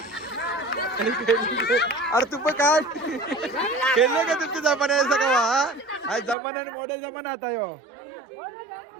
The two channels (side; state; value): left; drops out; at 6.4 s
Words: अरे तू पण काय खेळले का तुमच्या जमान्याचा का आज जमान्याने मॉडेल जमाना आता यो.